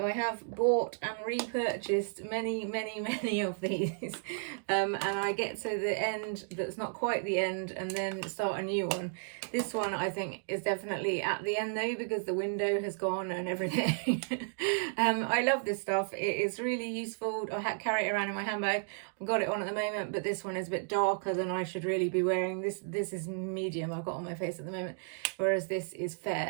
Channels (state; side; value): silent; left; digital silence